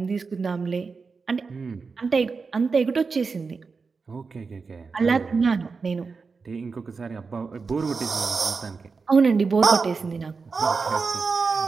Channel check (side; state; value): left; quieter; 4.8 dB